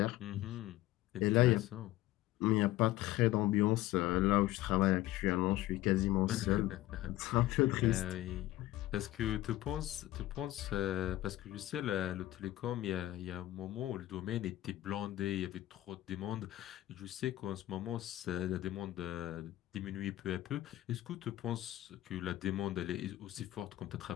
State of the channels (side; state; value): right; quieter; 15.7 dB